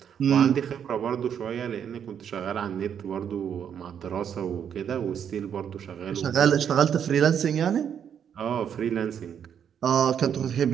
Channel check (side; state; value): left; quieter; 8.3 dB